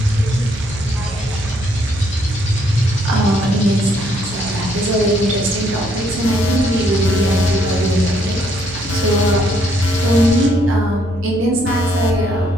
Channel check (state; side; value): noise; right; hum, 17 dB below the sound